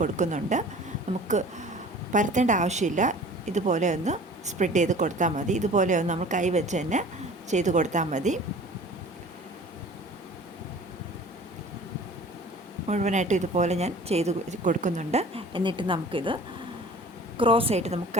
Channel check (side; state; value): both; normal; correlation 0.45